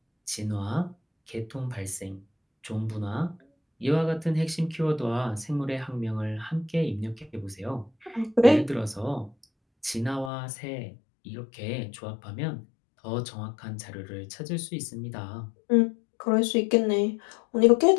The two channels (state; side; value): drops out; right; at 10.3 s